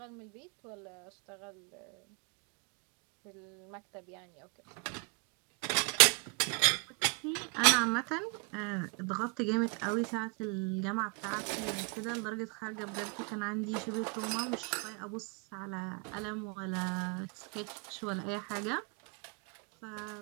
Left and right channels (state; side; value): quieter; left; 35.3 dB